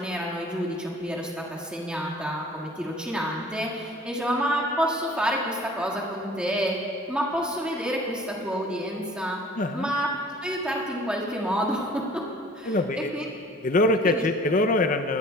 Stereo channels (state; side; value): normal; both; correlation 0.49